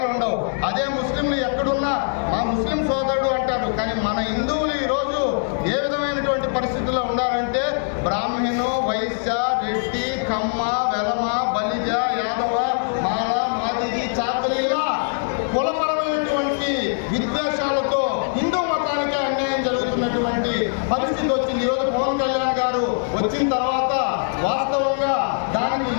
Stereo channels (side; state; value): right; silent; digital silence